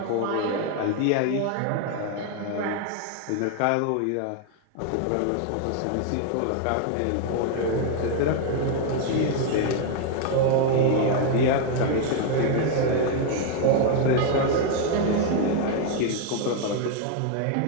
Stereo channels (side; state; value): both; different; correlation 0.00